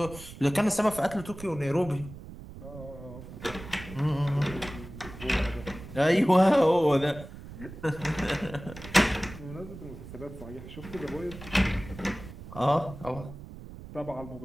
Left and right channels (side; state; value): right; noise; rumble, 14 dB below the sound